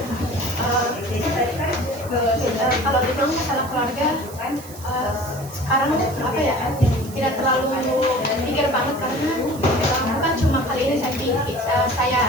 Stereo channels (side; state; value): right; noise; hiss, 17 dB below the sound